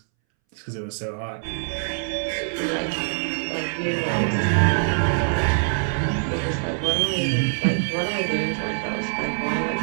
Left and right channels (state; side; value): silent; left; 63 dB below the other